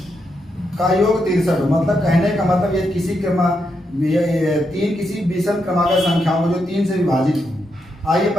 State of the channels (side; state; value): both; normal; correlation 0.82